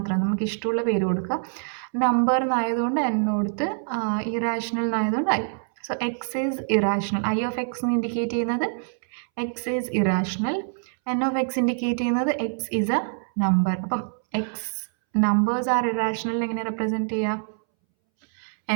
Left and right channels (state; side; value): silent; left; 62 dB below the other